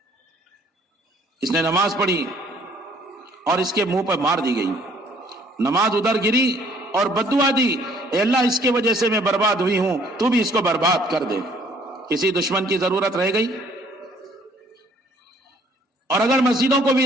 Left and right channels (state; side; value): normal; both; correlation 0.60